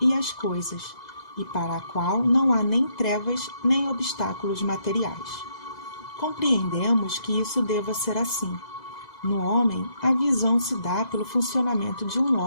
e as coisas, e para a qual não há nem trevas nem obstáculos materiais. Compreendemos que isso deva ser assim. No homem, a visão se dá pelo funcionamento de um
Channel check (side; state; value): right; late; 2.0 ms